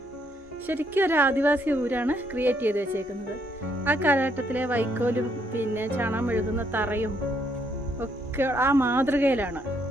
ശരിക്കും ഒരു ആദിവാസി ഊരാണ് ക്രിയേറ്റ് ചെയ്ത് വെച്ചേക്കുന്നത്. ആ കാലഘട്ടത്തിലെ വൈക്കോലും പിന്നെ ചാണകം മെഴുകുന്ന തറയും ഒക്കെ ആ മാതൃകയിലാണ്.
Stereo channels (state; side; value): normal; both; correlation 0.72